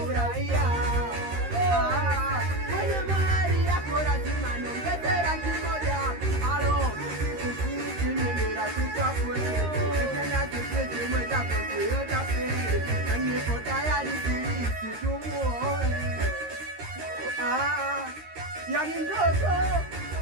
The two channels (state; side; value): late; left; 13 ms